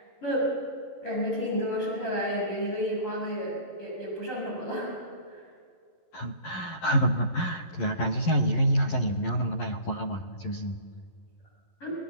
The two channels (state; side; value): late; right; 11 ms